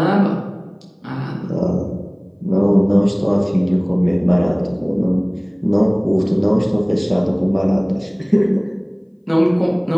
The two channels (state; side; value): identical; both; correlation 1.00